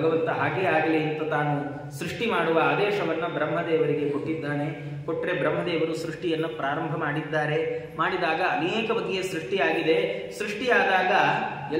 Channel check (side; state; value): both; identical; correlation 1.00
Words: ಹಾಗೇ ಆಗಲಿ ಅಂತ ತಾನು ಸೃಷ್ಟಿ ಮಾಡುವ ಆದೇಶವನ್ನ ಬ್ರಹ್ಮದೇವರಿಗೆ ಕೊಟ್ಟಿದ್ದಾನೆ. ಕೊಟ್ಟರೆ ಬ್ರಹ್ಮದೇವರು ಸೃಷ್ಟಿಯನ್ನು ಪ್ರಾರಂಭ ಮಾಡಿದಾಗ ಅನೇಕ ಬಗೆಯ ಸೃಷ್ಟಿಯಾಗಿದೆ. ಸೃಷ್ಟಿಯಾದಾಗ